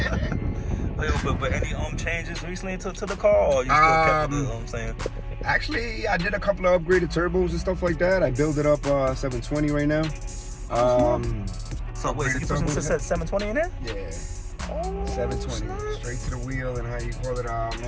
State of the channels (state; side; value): identical; both; correlation 1.00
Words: but any changes recently to the car, or you still kept the, I'm saying? Actually, I did a couple of upgraded turbos and stuff like that. I built it up 720 right now. So wait, so you put some 720 in there? Yeah. Oh, 720 straight to the wheel, and how you call it, they